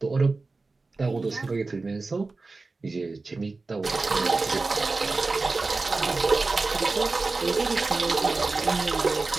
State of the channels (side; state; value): left; quieter; 3.7 dB